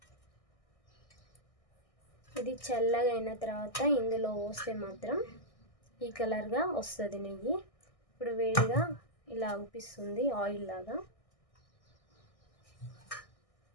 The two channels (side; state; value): right; late; 1.6 ms